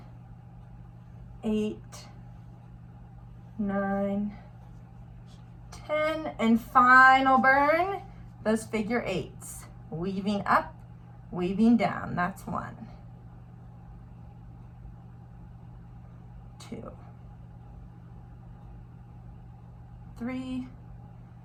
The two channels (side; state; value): both; identical; correlation 1.00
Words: 8, 9, 10, and final burn, those figure 8s. Weaving up, weaving down. That's 1, 2, 3,